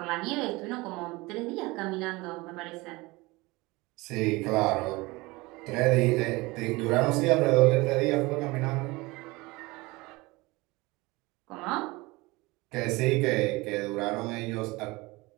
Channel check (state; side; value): quieter; left; 22.8 dB